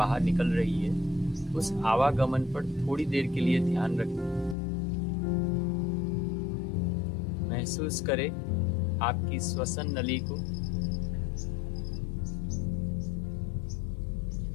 निकल रही है। उस आवागमन पर थोड़ी देर के लिए ध्यान रखें। महसूस करें आपकी श्वसन नली को,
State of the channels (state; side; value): drops out; right; at 4.5 s